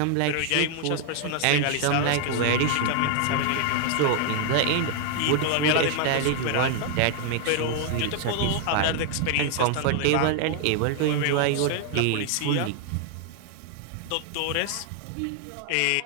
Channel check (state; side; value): different; both; correlation 0.00